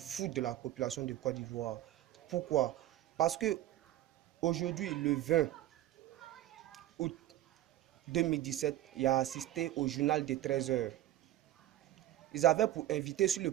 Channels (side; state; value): left; quieter; 14.0 dB